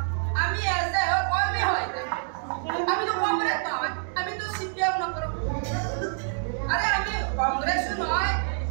আমি এসে কর্মী হয় আমি তো কংগ্রেস নয় আমি তো সিপিএম নকর আরে আমি কংগ্রেস নয়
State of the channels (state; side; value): silent; left; digital silence